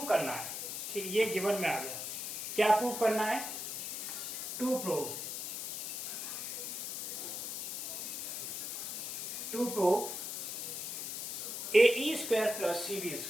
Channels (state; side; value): noise; left; hiss, 4 dB below the sound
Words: करना है, ठीक, ये गिवन में आ गया, क्या प्रूव करना है, to prove AE square plus CD